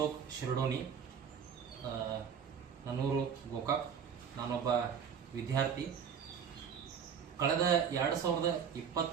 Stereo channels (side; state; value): left; quieter; 7.4 dB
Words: ಶಿರಡೋನಿ. ನನ್ನೂರು ಗೋಕಾಕ್. ನಾನೊಬ್ಬ ವಿದ್ಯಾರ್ಥಿ. ಕಳೆದ